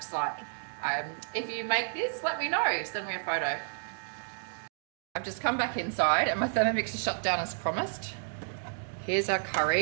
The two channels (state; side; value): silent; left; digital silence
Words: like. If you make this, let me know. Send me a photo. I've just come back inside and my Thermomix is shut down as promised. Here's our